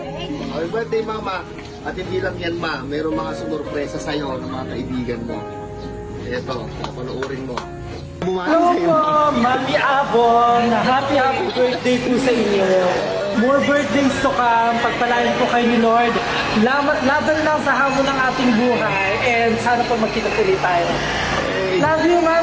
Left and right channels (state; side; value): identical; both; correlation 1.00